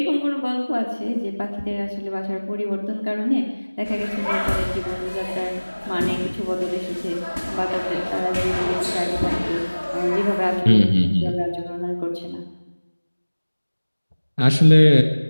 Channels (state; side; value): inverted; both; correlation -1.00